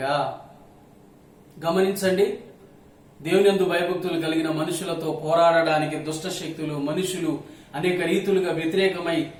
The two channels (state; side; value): identical; both; correlation 1.00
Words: గమనించండి, దేవుని యందు భయభక్తులు కలిగిన మనుషులతో పోరాడడానికి దుష్ట శక్తులు, మనుషులు అనేక రీతులుగా